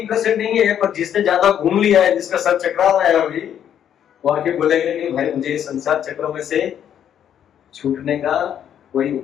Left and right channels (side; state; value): right; quieter; 9.6 dB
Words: नहीं है, पर जिसने ज्यादा घूम लिया है, जिसका सर चकरा रहा है अभी, वो आके बोलेगा कि भाई मुझे संसार चक्र में से छूटने का कोई